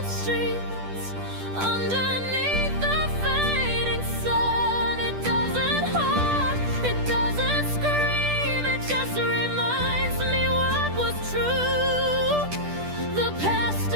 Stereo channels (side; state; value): left; late; 10 ms